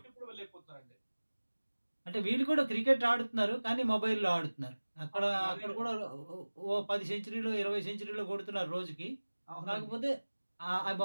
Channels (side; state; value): both; inverted; correlation -1.00